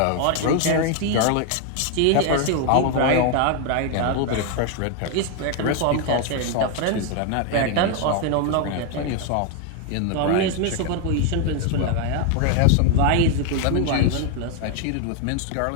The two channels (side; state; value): both; different; correlation 0.01